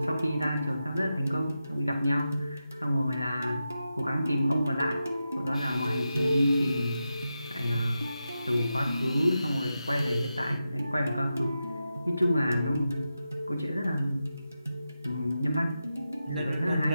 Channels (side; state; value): both; inverted; correlation -0.90